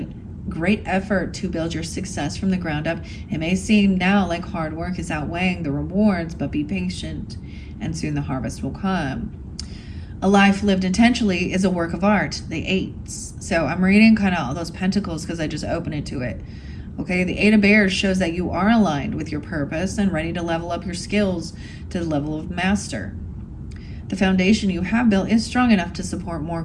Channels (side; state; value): both; identical; correlation 1.00